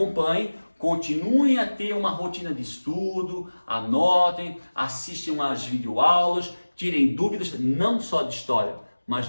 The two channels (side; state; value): both; inverted; correlation -1.00